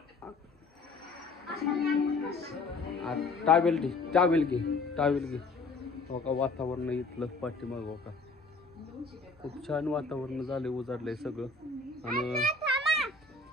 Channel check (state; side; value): quieter; right; 3.7 dB